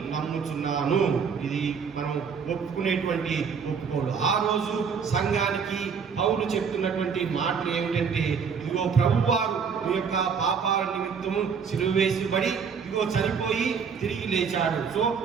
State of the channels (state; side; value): quieter; left; 6.2 dB